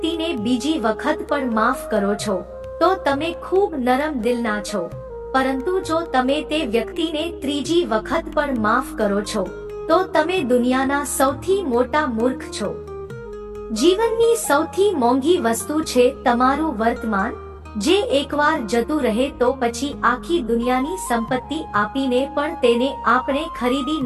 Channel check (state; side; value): identical; both; correlation 1.00